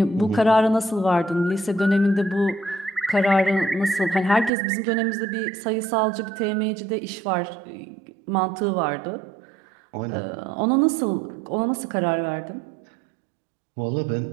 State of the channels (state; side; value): drops out; left; at 4.5 s